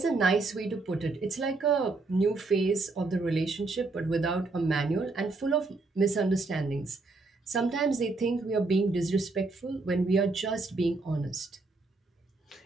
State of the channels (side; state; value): left; quieter; 3.5 dB